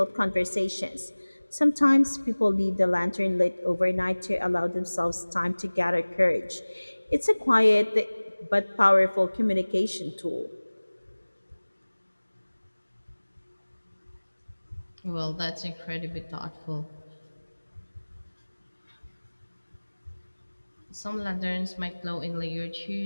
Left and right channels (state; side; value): inverted; both; correlation -1.00